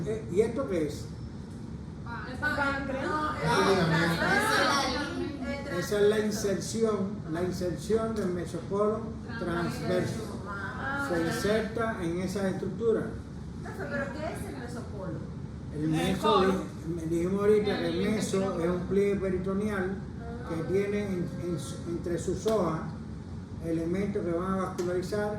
¿y esto qué es? Esa es la inserción del mesocolon transverso. Se inserta en esa estructura. ¿Pero qué es el mesopolo? El meso, dijimos ahorita que el meso es un pliegue peritoneal que tiene entre sus hojas elementos que van a vascularizar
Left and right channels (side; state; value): both; identical; correlation 1.00